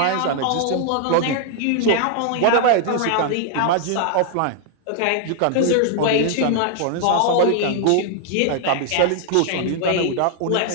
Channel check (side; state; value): both; different; correlation 0.00